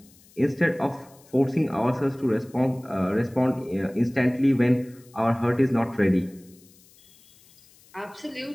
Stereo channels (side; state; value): left; noise; hiss, 28 dB below the sound